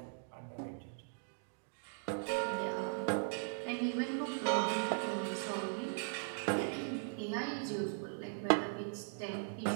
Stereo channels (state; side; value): silent; left; digital silence